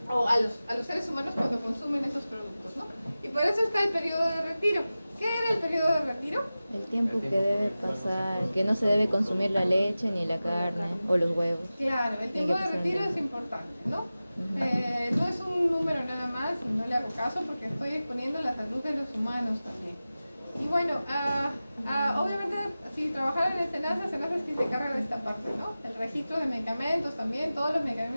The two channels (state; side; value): inverted; both; correlation -0.96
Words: o a los seres humanos cuando consumen esos productos, ¿no? Y por eso está el periodo de retiro. ¿Qué era el periodo de retiro? El tiempo que debe pasar, que no se debe consumir la leche ni la carne o los huevos. Claro, el tiempo de retiro es importante, ¿no? No es un número nada más, y no le hago caso porque estoy exponiendo la salud de los humanos también. Y bueno, obviamente si trabajaran en Senasa es quien se encarga de esta parte, ¿no? El registro de medicamentos también, todos los